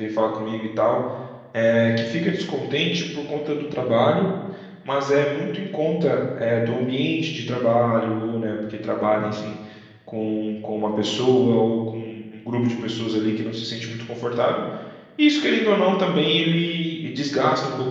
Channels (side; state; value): both; identical; correlation 1.00